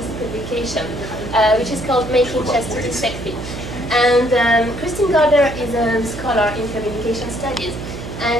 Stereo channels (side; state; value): right; noise; hum, 9 dB below the sound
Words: publication, which is called Making Chastity Sexy. And Christine Gardner is a scholar in communication studies,